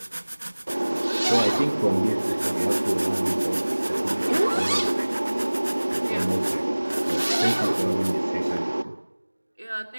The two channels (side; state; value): both; inverted; correlation -1.00